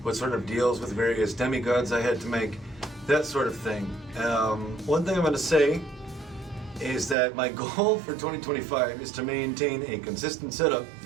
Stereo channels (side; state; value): left; drops out; at 7.2 s